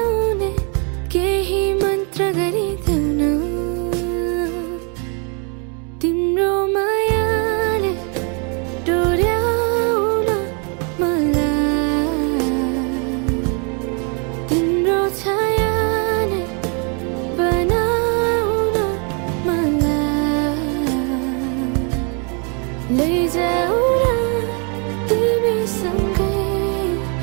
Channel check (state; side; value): quieter; left; 36.4 dB